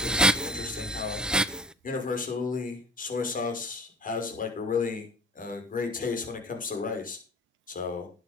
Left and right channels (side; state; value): both; normal; correlation 0.42